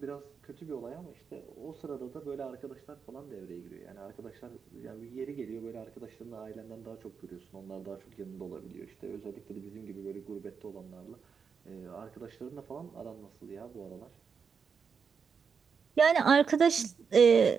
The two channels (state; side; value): quieter; left; 6.1 dB